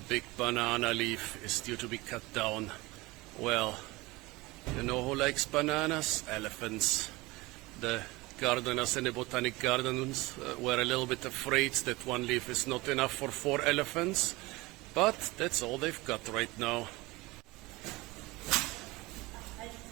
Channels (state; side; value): quieter; left; 21.9 dB